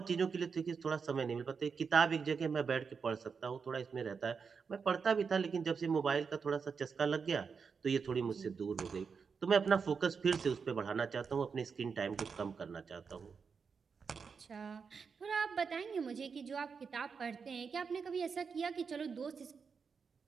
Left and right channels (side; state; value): left; quieter; 5.7 dB